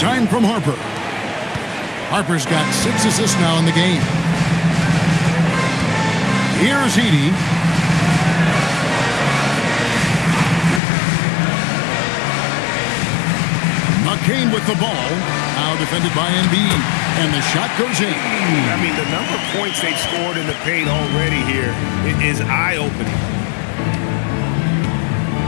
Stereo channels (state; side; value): drops out; right; at 10.8 s